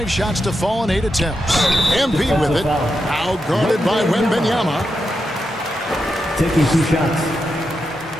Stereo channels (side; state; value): both; normal; correlation 0.86